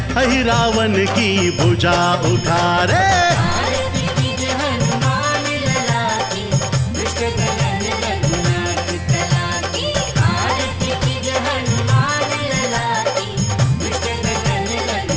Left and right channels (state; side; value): identical; both; correlation 1.00